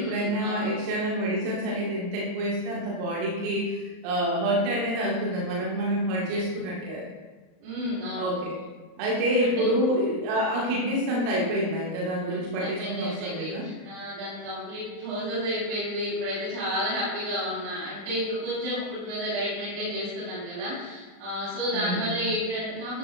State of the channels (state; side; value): late; left; 38 ms